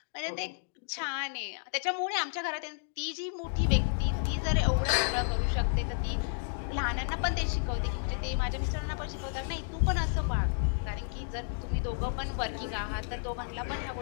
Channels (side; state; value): right; silent; digital silence